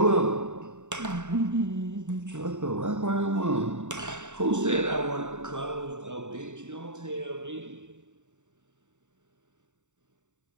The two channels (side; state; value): left; late; 0.85 ms